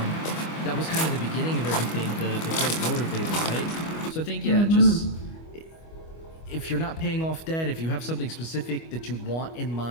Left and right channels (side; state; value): right; late; 25 ms